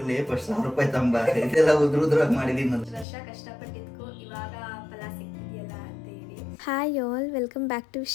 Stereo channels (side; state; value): right; drops out; at 3.1 s